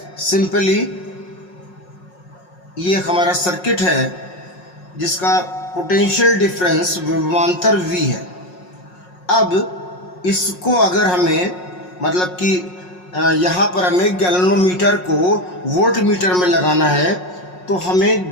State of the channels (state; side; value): late; right; 5.5 ms